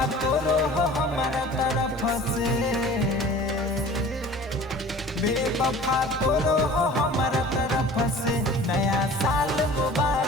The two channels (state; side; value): normal; both; correlation 0.44